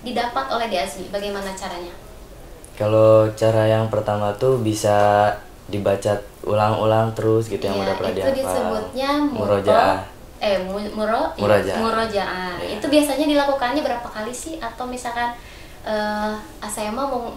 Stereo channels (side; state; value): both; identical; correlation 1.00